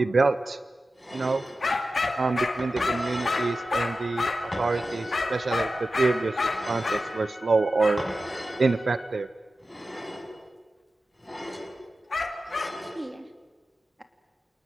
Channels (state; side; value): normal; both; correlation 0.93